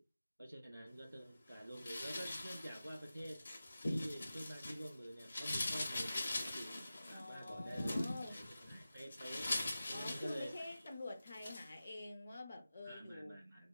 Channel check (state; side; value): inverted; both; correlation -0.94